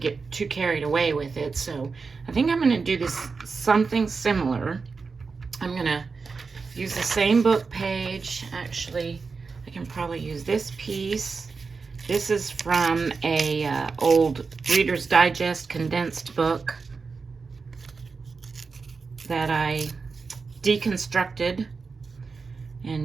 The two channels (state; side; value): quieter; left; 4.7 dB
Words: too carried away with it. So I think I'm going to do this something similar. I'm going to use the same book page. Actually, I can probably use this piece. This is from a old Reader's Digest condensed book that I deconstructed